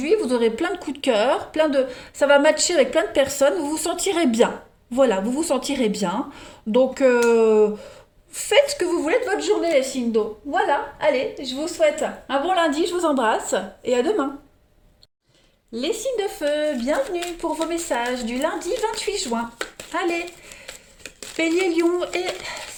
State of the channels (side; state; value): both; identical; correlation 1.00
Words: vous aurez plein de coups de cœur, ça va matcher avec plein de personnes, vous vous sentirez bien. Voilà, vous vous sentirez bien. Donc, faites ce que vous voulez de votre journée, les signes d'eau. Voilà, allez, je vous souhaite un bon lundi, je vous embrasse et à demain. Les signes de feu, bienvenue pour vos messages du lundi 28 juin. Allez, Bélier, Lion et